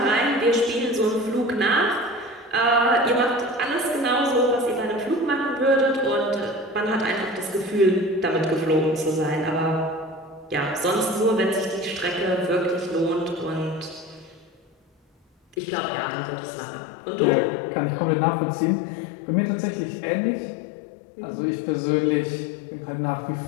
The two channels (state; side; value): drops out; right; at 15.6 s